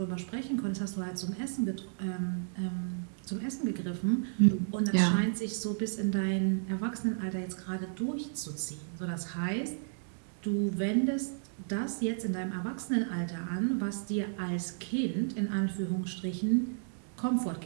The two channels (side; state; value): left; silent; digital silence